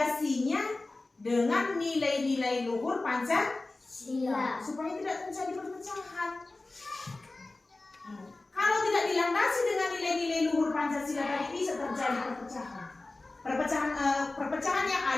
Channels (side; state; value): right; quieter; 3.1 dB